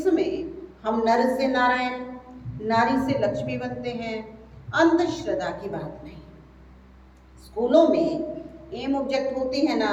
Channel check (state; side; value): identical; both; correlation 1.00